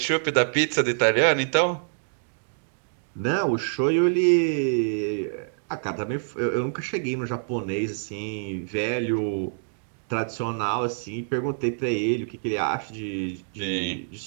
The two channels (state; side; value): silent; left; digital silence